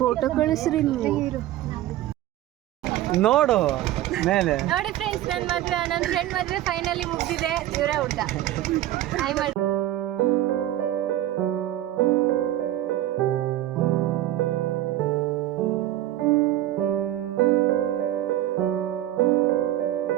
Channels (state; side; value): quieter; left; 13.8 dB